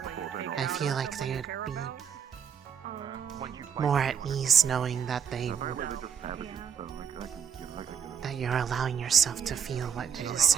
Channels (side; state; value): left; quieter; 7.4 dB